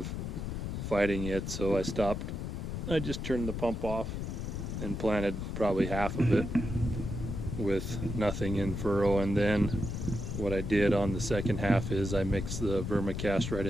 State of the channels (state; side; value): noise; left; rumble, 4 dB below the sound